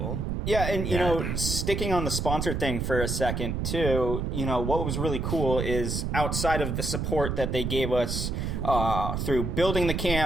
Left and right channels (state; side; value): noise; right; rumble, 2 dB below the sound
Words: Yeah, and you know, sticking on the sponsor thing for a second too, you know, what was really cool is outside of the support that they gave us through building the